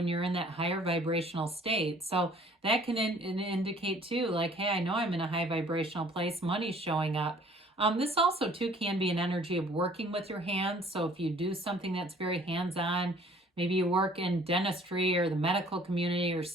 you're in that higher vibrational state. So that can indicate too, like, hey, I know I'm in a high vibrational place. Money's showing up. This also too can be an energy of working with your hands. So if you do something that's very hands-on, maybe you work in dentistry or the medical community or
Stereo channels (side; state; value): both; normal; correlation 0.55